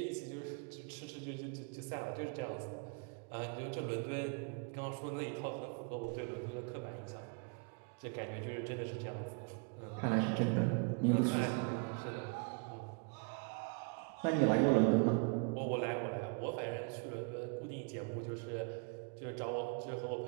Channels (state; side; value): quieter; left; 36.3 dB